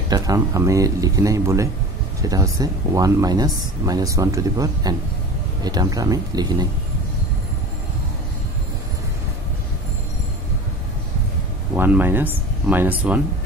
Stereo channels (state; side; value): normal; both; correlation 0.37